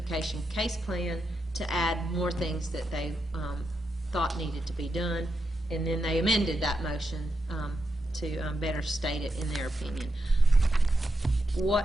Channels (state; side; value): normal; both; correlation 0.85